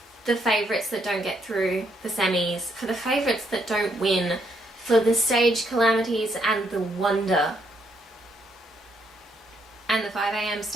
the favourites that don't get through the semis, for the favourites that don't win, for the stage calamities and the wonder. And the 5 a.m.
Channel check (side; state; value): both; normal; correlation 0.73